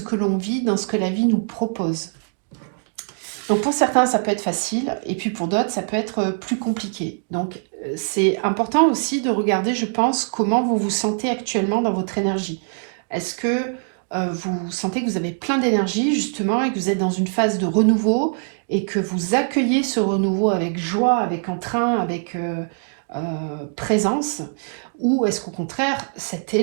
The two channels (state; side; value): silent; left; digital silence